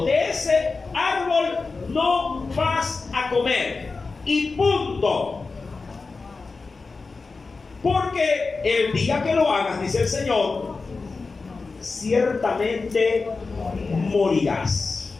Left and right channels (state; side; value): quieter; right; 4.1 dB